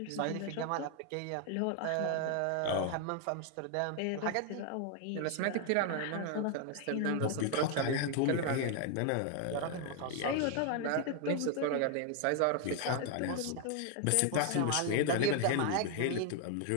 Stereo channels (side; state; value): both; different; correlation 0.00